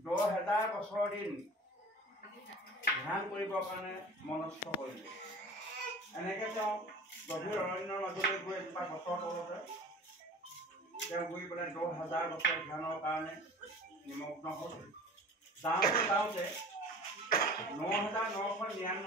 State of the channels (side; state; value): both; normal; correlation 0.41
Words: 10,000 বছৰ দিন ধ্যান কৰিবৰ কাৰণে মনস্থ কৰিলে। এনেকে তেওঁ গভীৰ অৰণ্যৰ মাজলৈ গৈ এজোপা গছৰ তলতে তেওঁ গৈ পেলাই 10,000 বছৰ ধ্যানৰ কাৰণে নিমগ্ন হ'ল। যাওঁতে